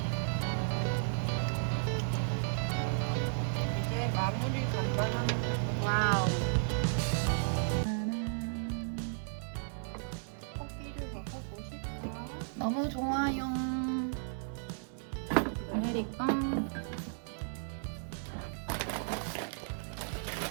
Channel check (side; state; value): left; silent; 55 dB below the other